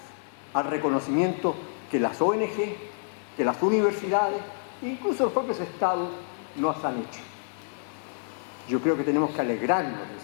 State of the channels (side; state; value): right; silent; digital silence